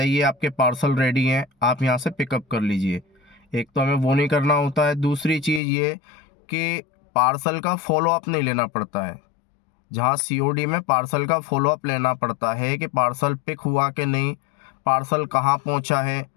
आपके पार्सल रेडी हैं, आप यहाँ से पिकअप कर लीजिए। एक तो हमें वो नहीं करना होता है। दूसरी चीज़ ये कि पार्सल का फॉलो अप नहीं लेना पड़ता है। जहाँ सीओडी में पार्सल का फॉलो अप लेना पड़ता है कि पार्सल पिक हुआ कि नहीं, पार्सल कहाँ पहुँचा है,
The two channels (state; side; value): drops out; right; at 5.6 s